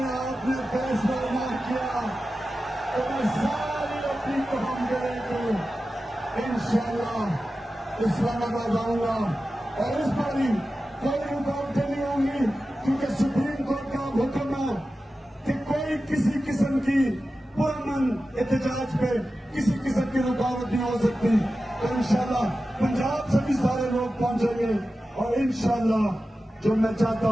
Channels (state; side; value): normal; both; correlation 0.93